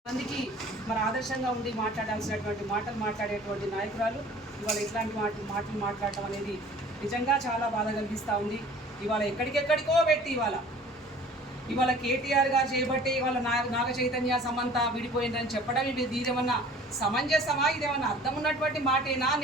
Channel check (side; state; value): both; normal; correlation 0.48